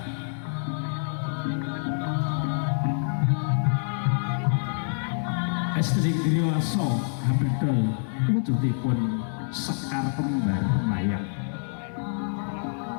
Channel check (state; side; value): silent; right; digital silence